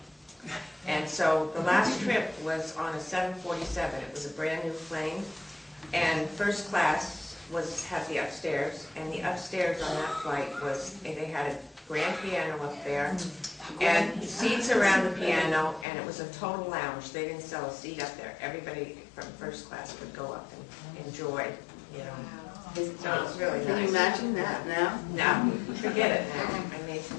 And so the last trip was on a 747. It was a brand new plane, and first class had the upstairs, and the upstairs on that flight was, they had a grand piano up there, and seats around the piano, and it was a total lounge. They didn't sell a seat up there. Everybody from first class could go up and enjoy, you know. So it was really nice. Can you imagine that now? No, forget it now. I mean,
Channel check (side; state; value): right; drops out; at 15.9 s